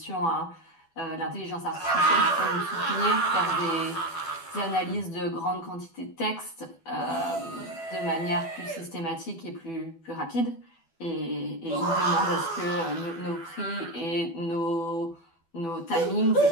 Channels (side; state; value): right; late; 12 ms